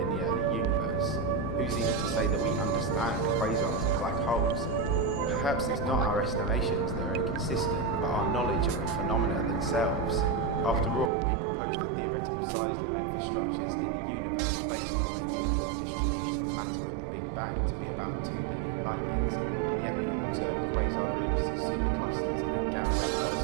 the early universe? Who's even to say that we understand quasars and black holes? Perhaps it's not our estimations that are inconsistent, but our knowledge of the phenomena themselves. After all, we proposed a theoretical size limit for structures in the universe based on a uniform distribution of matter at the Big Bang to be about 2 billion light years, and yet we have observed quasar groups, superclusters, and gamma-ray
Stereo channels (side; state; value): left; drops out; at 11.1 s